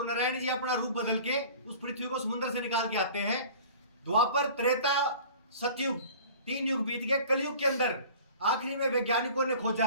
नारायण जी अपना रूप बदल के उस पृथ्वी को समुद्र से निकाल के आते हैं। द्वापर, त्रेता, सतयुग, 3 युग बीत गए। कलयुग के अंदर आखिरी में वैज्ञानिकों ने खोजा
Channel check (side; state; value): both; inverted; correlation -0.43